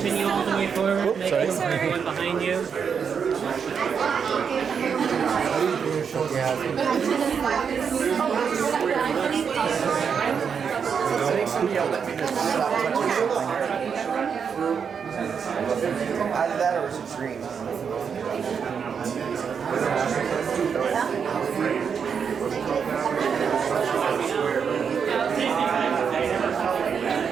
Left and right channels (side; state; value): left; quieter; 6.7 dB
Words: all the way forward, make everyone behind you. Either that or it's green.